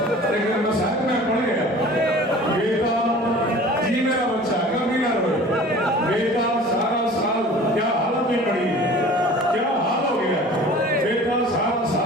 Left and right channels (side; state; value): both; normal; correlation 0.44